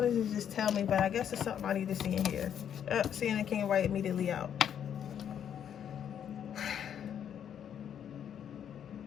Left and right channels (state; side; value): quieter; right; 9.0 dB